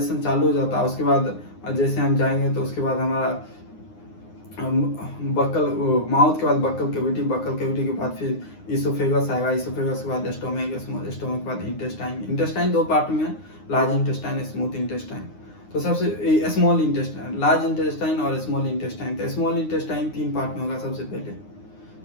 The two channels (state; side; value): late; right; 9.7 ms